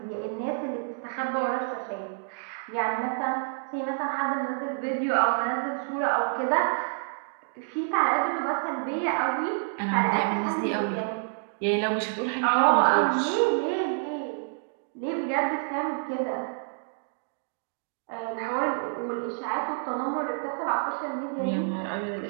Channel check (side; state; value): left; silent; digital silence